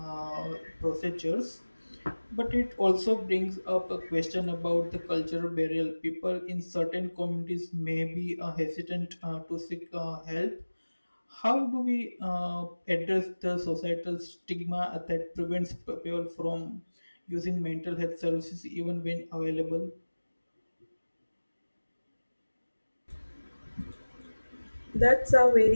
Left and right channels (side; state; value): both; inverted; correlation -1.00